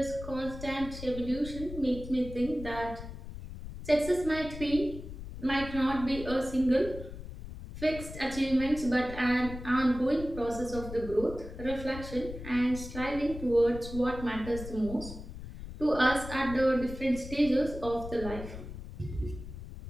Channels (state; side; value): noise; left; rumble, 11 dB below the sound